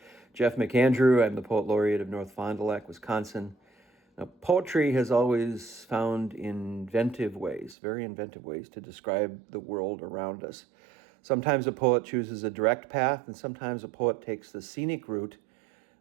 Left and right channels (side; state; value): left; drops out; at 7.8 s